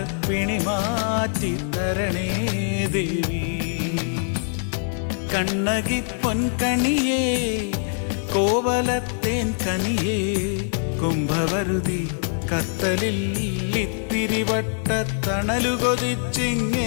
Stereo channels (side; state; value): right; silent; digital silence